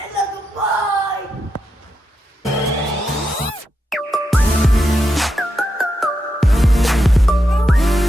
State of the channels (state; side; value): normal; both; correlation 0.85